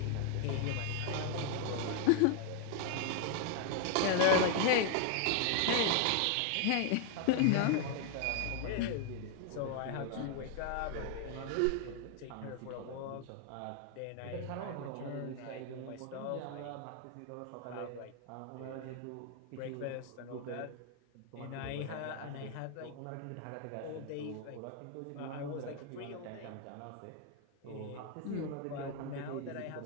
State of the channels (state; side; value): different; both; correlation 0.00